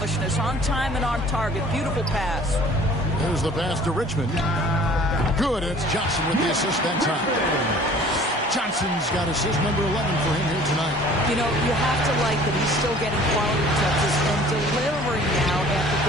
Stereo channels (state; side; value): normal; both; correlation 0.50